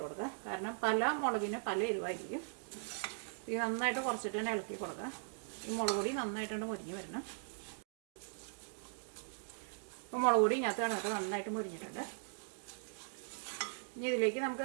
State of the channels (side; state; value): left; silent; digital silence